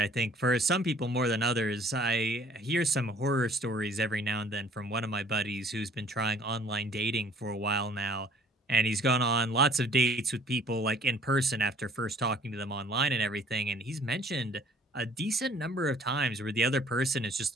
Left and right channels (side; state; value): both; normal; correlation 0.55